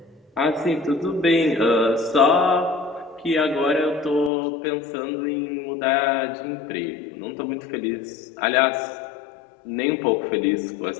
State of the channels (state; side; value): drops out; right; at 4.3 s